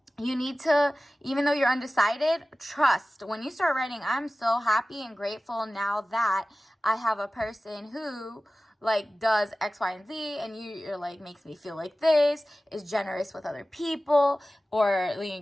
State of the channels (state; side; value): normal; both; correlation 0.96